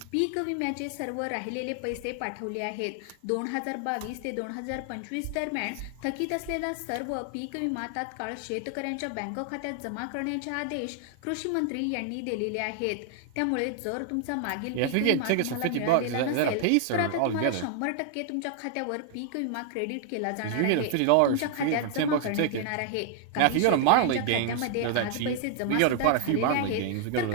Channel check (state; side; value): different; both; correlation 0.00